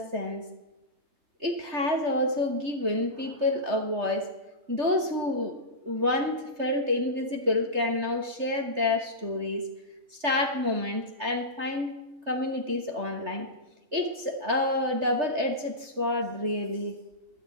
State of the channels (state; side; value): late; left; 3.3 ms